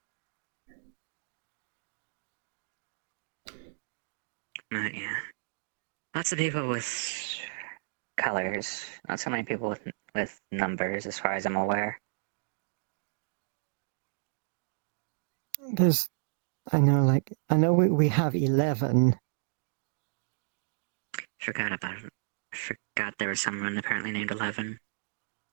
Yeah. Lots of people with colors. Not so many people with numbers, as far as I'm aware. I know, like, I know we have 11. Forgot about it. Forgot there was someone apparently named 11.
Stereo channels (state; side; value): silent; left; digital silence